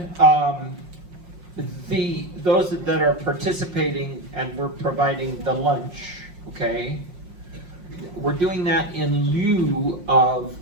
those that are participating, and we're providing the lunch, okay? We're doing that in lieu of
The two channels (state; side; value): late; left; 5.6 ms